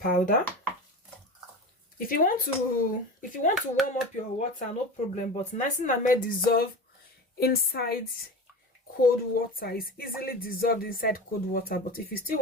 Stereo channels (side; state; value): both; normal; correlation 0.29